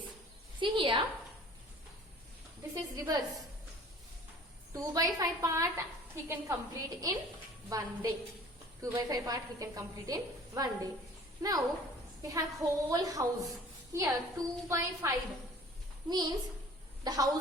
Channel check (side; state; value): both; normal; correlation 0.48